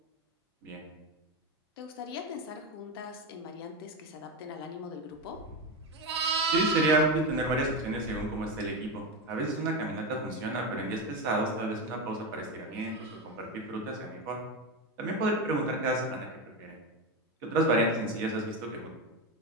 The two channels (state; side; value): normal; both; correlation 0.15